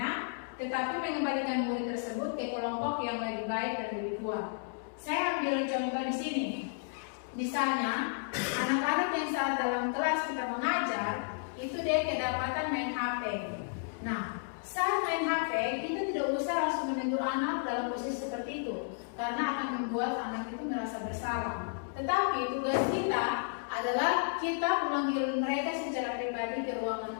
tetapi mengembalikan murid tersebut ke kelompok yang lebih baik dan lebih kuat. Saya ambil contoh di sini. Misalnya, anak-anak yang saat dalam kelas kita mengajar, itu dia kedapatan main HP. Nah, saat main HP, kita tidak usah langsung menegur anak dalam posisi seperti itu, karena akan membuat anak itu merasa bersalah. Tetapi tugas kita adalah kita memanggil mereka secara pribadi ke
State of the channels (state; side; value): silent; right; digital silence